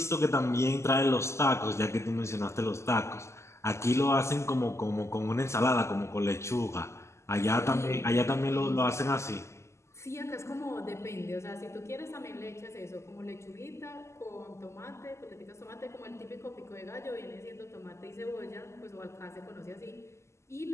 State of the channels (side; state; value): right; late; 0.13 ms